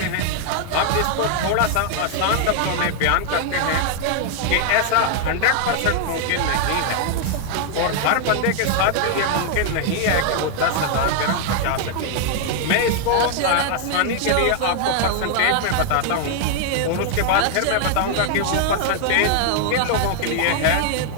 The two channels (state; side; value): different; both; correlation 0.00